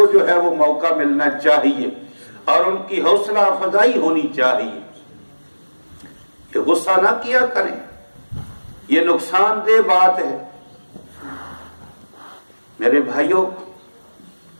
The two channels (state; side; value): inverted; both; correlation -1.00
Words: جو ہے وہ موقع ملنا چاہیے اور ان کی حوصلہ افزائی ہونی چاہیے کہ غصہ نہ کیا کریں، یہ نقصان دہ بات ہے۔ میرے بھائیوں،